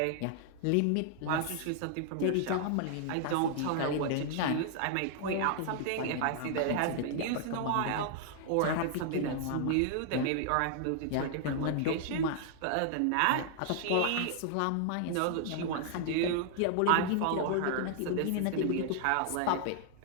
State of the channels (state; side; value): different; both; correlation -0.01